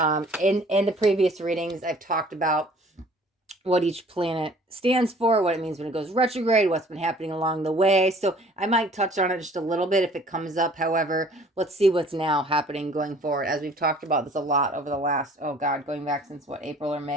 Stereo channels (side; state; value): both; normal; correlation 0.53